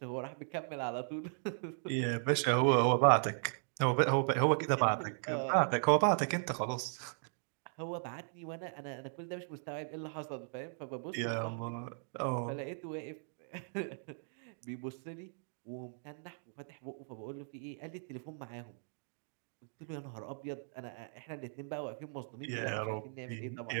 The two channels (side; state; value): left; silent; digital silence